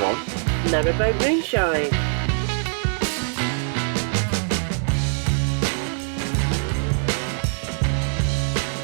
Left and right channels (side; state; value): left; silent; digital silence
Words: on Narrowboat Moonshine.